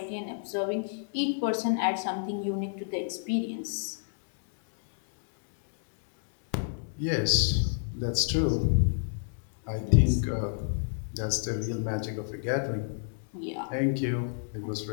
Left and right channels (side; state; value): right; silent; digital silence